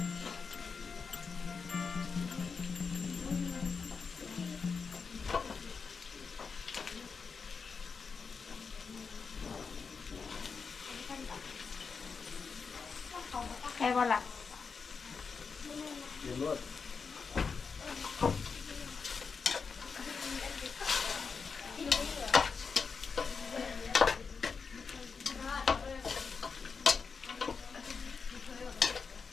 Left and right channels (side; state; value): right; quieter; 5.3 dB